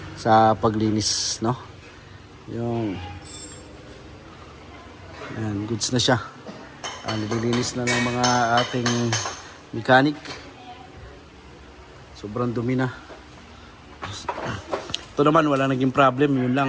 sa paglinis, no? Yung ayan, goods na siya. Nililinis na ng mga ating mechanic. Sobrang dumi na. Ito naman wala naging problem, yun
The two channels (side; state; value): both; identical; correlation 1.00